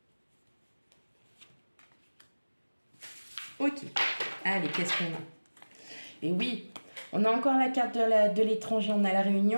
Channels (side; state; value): both; inverted; correlation -1.00